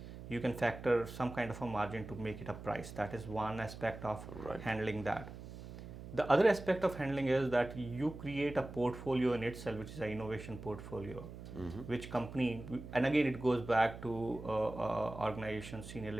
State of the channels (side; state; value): right; noise; hum, 12 dB below the sound